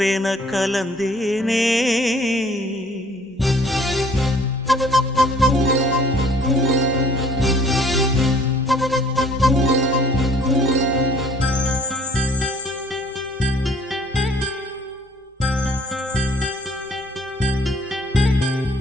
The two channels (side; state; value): both; normal; correlation 0.56